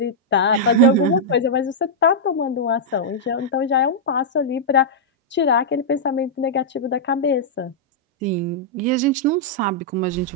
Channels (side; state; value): both; normal; correlation -0.09